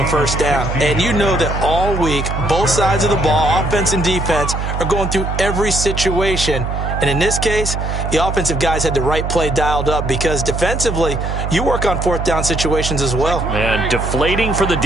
first down. And you know that all week, both sides of the ball, offense and defense, are going through every situation. And in this case, the offensive guys had the right play dialed up because defensively, you work on fourth down situations as well. And deflating for the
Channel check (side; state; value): right; noise; hum, 3 dB below the sound